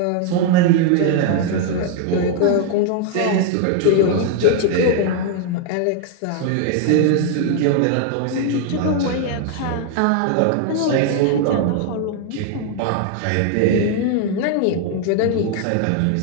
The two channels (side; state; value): both; different; correlation 0.00